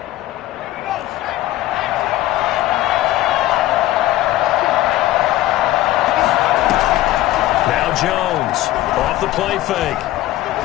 Jones off the play fake.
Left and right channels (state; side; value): quieter; right; 15.5 dB